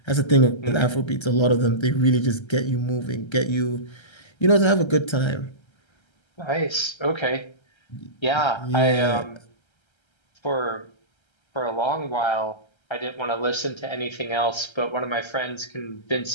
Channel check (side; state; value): right; late; 1.3 ms